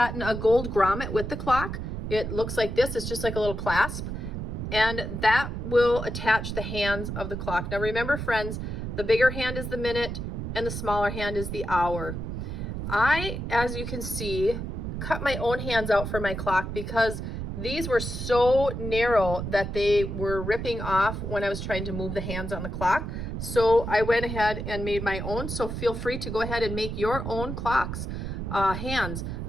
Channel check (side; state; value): right; noise; rumble, 5 dB below the sound